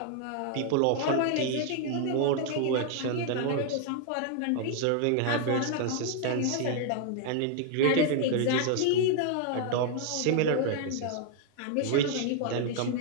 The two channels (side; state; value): both; different; correlation 0.00